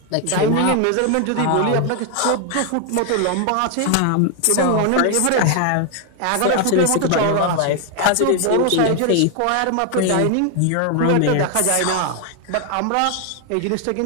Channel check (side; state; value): both; different; correlation 0.00